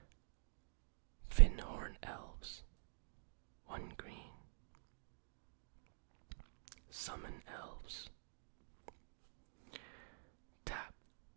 Finhorn Elves. 1 green. Summon Elves. Tap,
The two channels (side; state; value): left; silent; digital silence